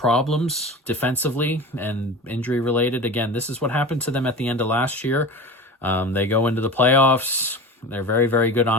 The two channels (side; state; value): both; normal; correlation 0.32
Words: defensively and injury related. Again, this is what happened to them at the end of last year. They go into the playoffs. They're very, very good